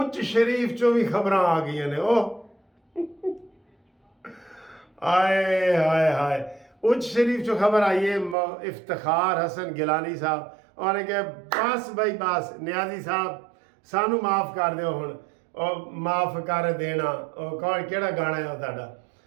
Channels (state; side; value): drops out; left; at 8.3 s